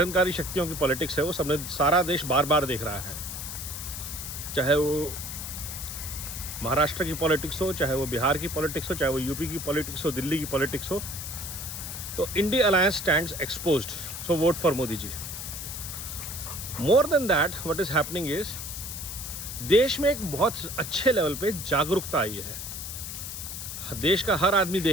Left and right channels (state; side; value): noise; left; hiss, 7 dB below the sound